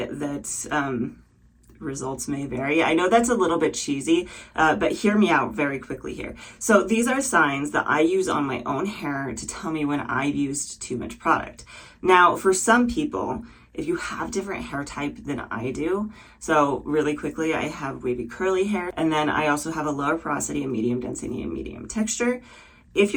that results may vary. I know that's a little bit cheesy, but hear me out very quickly here. So these are signs that I use on my own hair to tell me when I've used too much product. Now, for some people, if you have different hair type than I do, so really quickly, I have wavy curly hair, and then I also have a lower porosity, a medium density, and medium texture. If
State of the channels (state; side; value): identical; both; correlation 1.00